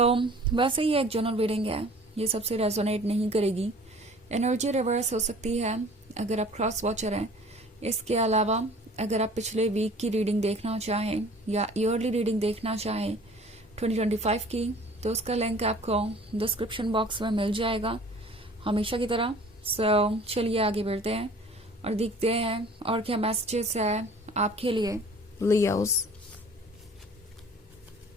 वैसे ही एक जनरल रीडिंग है, ये सबसे रेजोनेट नहीं करेगी। एनर्जी रिवर्स हो सकती है अगर आप क्रॉस वॉचर हैं। इसके अलावा अगर आप पिछले वीक की रीडिंग देखना चाहें या ईयरली रीडिंग देखना चाहें 2025 की, तो उसका लिंक आपको डिस्क्रिप्शन बॉक्स में मिल जाएगा हमेशा की तरह। सो चलिए आगे बढ़ते हैं और देखते हैं और क्या मैसेजेस है आपके लिए Leos.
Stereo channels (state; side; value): normal; both; correlation 0.48